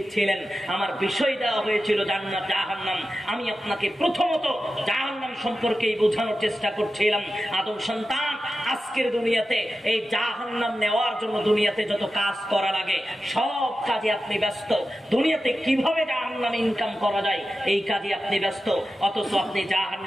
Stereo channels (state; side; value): normal; both; correlation 0.92